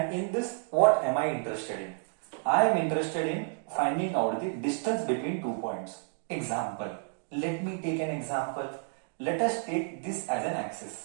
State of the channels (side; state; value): left; silent; 57 dB below the other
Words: in this what am I interested in? I am interested in finding out the distance between 2 points. Example, let me take an example. Let us take this as an axis.